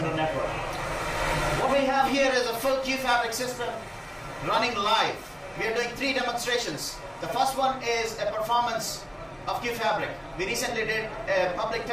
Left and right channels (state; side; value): identical; both; correlation 1.00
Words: network. What we have here is a full Qfabric system running live. We are doing 3 demonstrations. The first one is a performance of Qfabric. We recently did a public